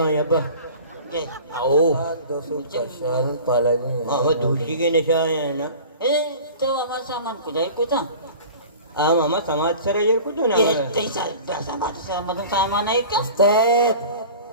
यहाँ पर ये आओ हाँ वो दूसरी के निशा है ना ए तो हमारा सामान को जाए को था आम हमारा समाज सर ये कुछ ना ये तैसा दस बात से मतलब सामान है क्या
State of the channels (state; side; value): inverted; both; correlation -0.40